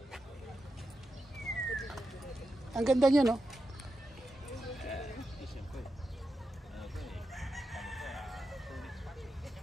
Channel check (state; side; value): normal; both; correlation 0.89